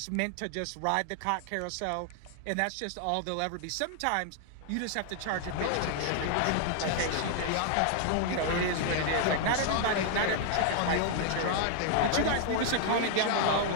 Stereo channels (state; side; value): different; both; correlation 0.00